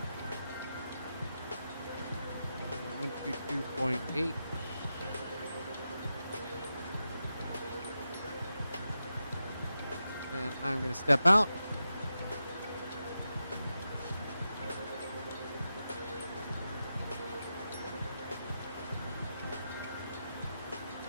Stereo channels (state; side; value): inverted; both; correlation -0.88